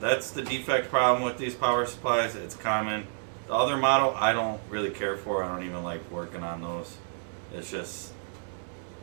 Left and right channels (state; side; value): silent; left; digital silence